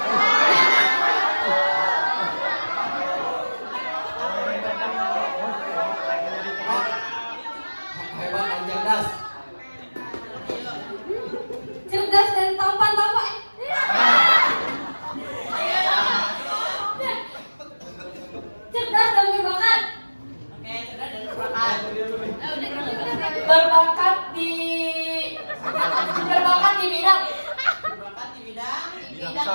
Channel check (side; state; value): both; inverted; correlation -1.00